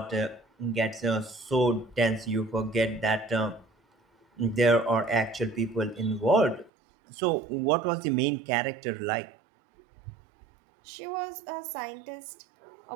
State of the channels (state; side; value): drops out; left; at 6.7 s